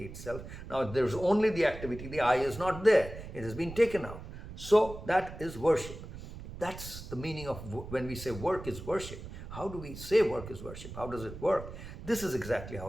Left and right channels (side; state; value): right; noise; rumble, 12 dB below the sound